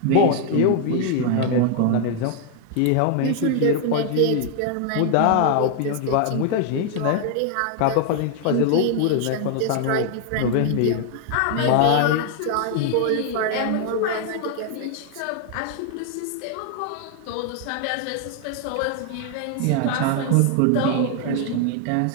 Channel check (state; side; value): different; both; correlation 0.00